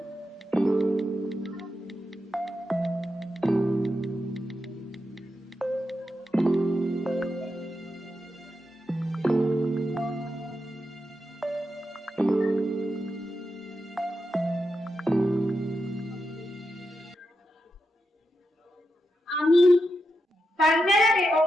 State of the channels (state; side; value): normal; both; correlation 0.87